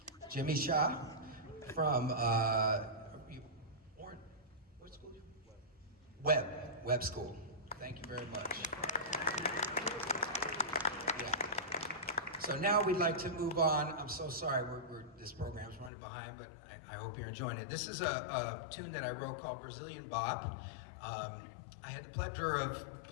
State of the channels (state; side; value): drops out; right; at 15.9 s